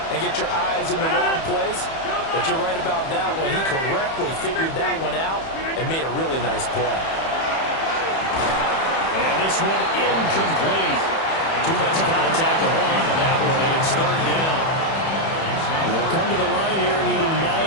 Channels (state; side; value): late; right; 31 ms